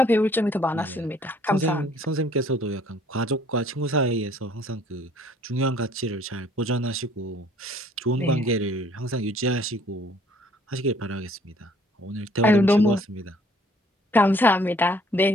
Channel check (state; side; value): normal; both; correlation 0.59